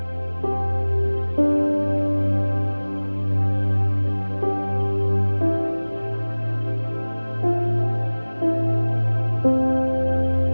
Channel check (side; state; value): both; inverted; correlation -1.00